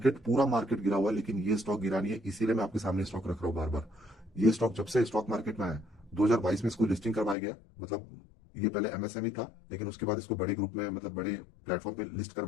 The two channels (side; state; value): right; drops out; at 7.4 s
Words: पूरा मार्केट गिरा हुआ है लेकिन ये स्टॉक गिरा नहीं है, इसीलिए मैं आपके सामने स्टॉक रख रहा हूँ बार बार। ये स्टॉक जब से स्टॉक मार्केट में आया 2022 में इसको लिस्टिंग करवाया गया, मतलब ये पहले एमएसएमई था लेकिन उसके बाद इसको बड़े ग्रुप में, मतलब बड़े प्लेटफॉर्म पे लिस्ट